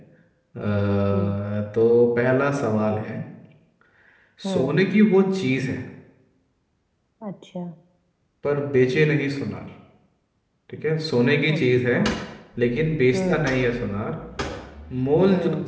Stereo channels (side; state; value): both; identical; correlation 1.00